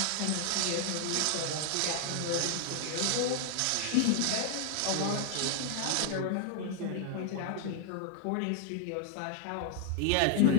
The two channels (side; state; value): both; different; correlation 0.00